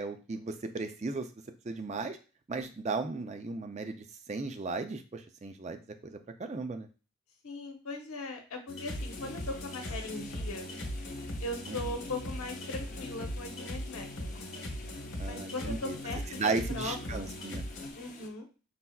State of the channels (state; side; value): normal; both; correlation 0.35